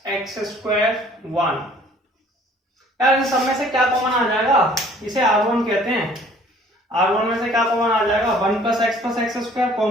square 1। यार इन सब में से क्या कॉमन आ जाएगा, इसे R1 कहते हैं। R1 में से क्या कॉमन आ जाएगा, 1 प्लस एक्स स्क्वायर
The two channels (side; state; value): both; normal; correlation 0.55